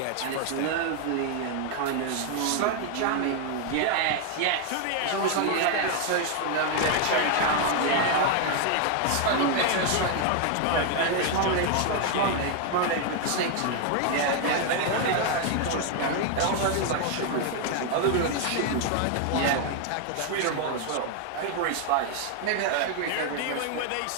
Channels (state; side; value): different; both; correlation 0.00